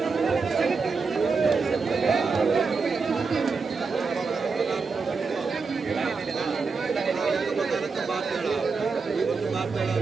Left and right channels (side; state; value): left; quieter; 4.7 dB